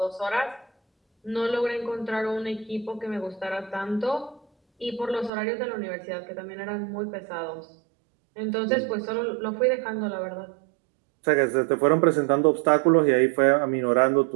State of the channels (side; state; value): left; drops out; at 5.3 s